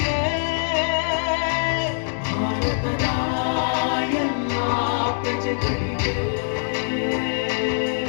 ಭಾರತದ ಎಲ್ಲ ಪ್ರಜೆಗಳಿಗೆ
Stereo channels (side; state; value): right; silent; digital silence